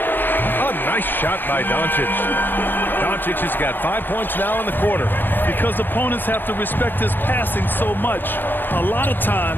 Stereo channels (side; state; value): right; late; 0.094 ms